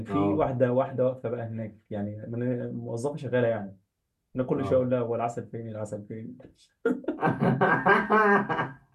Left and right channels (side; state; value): both; identical; correlation 1.00